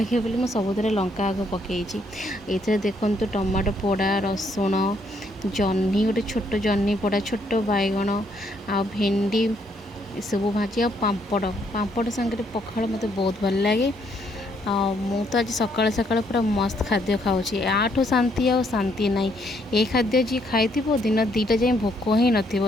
बोली मुझे सबुद लंका आग पकई ये देखु टमाटो पोड़ा रसुण जह्नी गोटे छोट जह्नी पोड़ा छोट बैगण आ भेंडी सब भाजी आ पापड़ पापड़ सांगे पखाड़ मत बहुत भल लगे मु तो आज सकाल सकाल पूरा मस्त खाद्य खाऊँगी आठू शांति आ शांति ना ये खाद्य जी खाई दिन दीटा जाए भोक ही न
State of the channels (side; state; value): both; normal; correlation 0.71